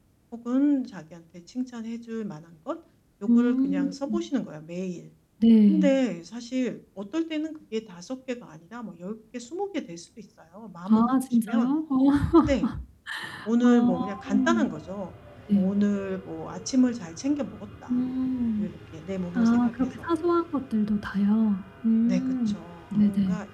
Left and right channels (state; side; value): identical; both; correlation 1.00